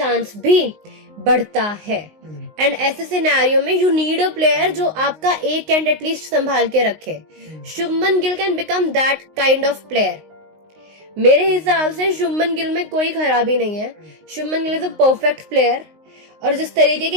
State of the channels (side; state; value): left; late; 19 ms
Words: भी बढ़ता है। एंड ऐसे सिनेरियो में यू नीड अ प्लेयर जो आपका एक एंड एटलीस्ट संभाल के रखे। Shubman Gill can become that kind of player. मेरे हिसाब से शुभमन गिल में कोई खराबी नहीं है। Shubman Gill is a perfect player. और जिस तरीके